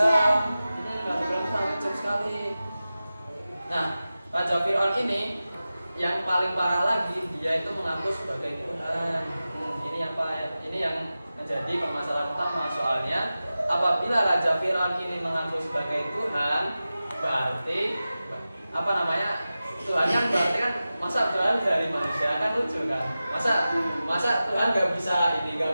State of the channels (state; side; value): inverted; both; correlation -0.95